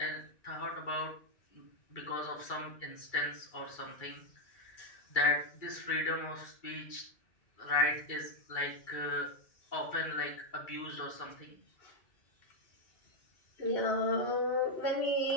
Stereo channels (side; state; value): right; late; 2.3 ms